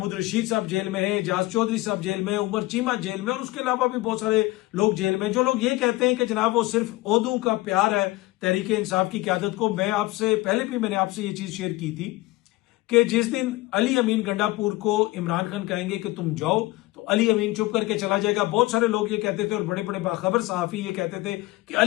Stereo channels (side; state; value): right; quieter; 19.9 dB